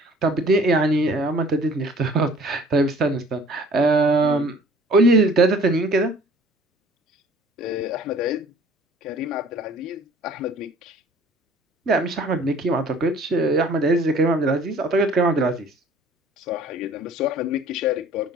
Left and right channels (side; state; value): both; normal; correlation 0.51